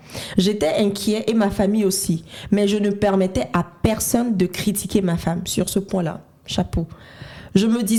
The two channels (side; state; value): both; identical; correlation 1.00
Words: J'étais inquiet et ma famille aussi, mais je ne permettais à personne de critiquer ma femme sur ce point-là. Chapeau. Je me